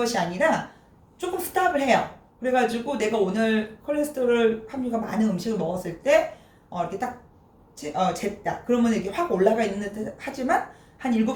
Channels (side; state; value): both; identical; correlation 1.00